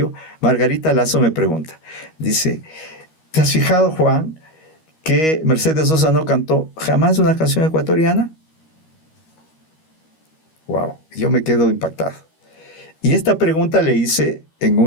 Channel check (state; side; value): late; right; 13 ms